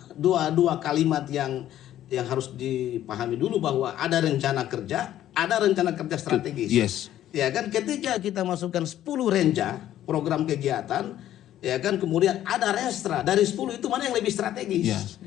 dua kalimat yang harus dipahami dulu, bahwa ada rencana kerja, ada rencana kerja strategis. Ya kan, ketika kita masukkan 10 renja program kegiatan, ya kan, kemudian ada renstra, dari 10 itu mana yang lebih strategis?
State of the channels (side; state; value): right; quieter; 12.3 dB